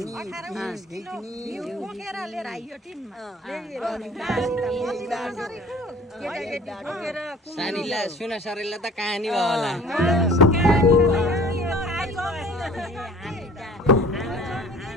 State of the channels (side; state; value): both; normal; correlation 0.48